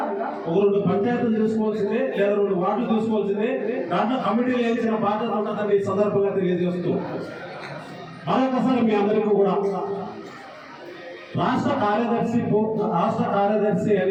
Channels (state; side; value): identical; both; correlation 1.00